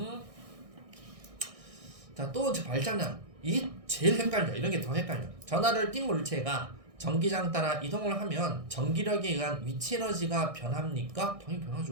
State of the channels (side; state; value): left; late; 1.6 ms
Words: 자, 또 발장난. 이게 제일 헷갈려. 이런 게 더 헷갈려. 전하를 띈 물체가 전기장 따라 이동을 하면 전기력에 의한 위치 에너지가 변합니까? 당연히